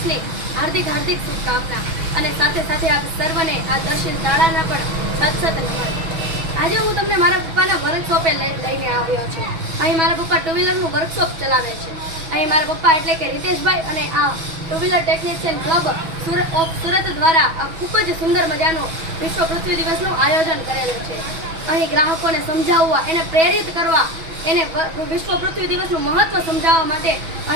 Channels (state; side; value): late; left; 6.2 ms